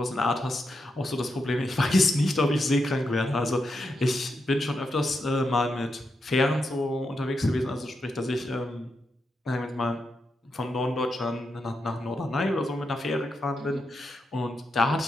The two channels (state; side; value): normal; both; correlation 0.85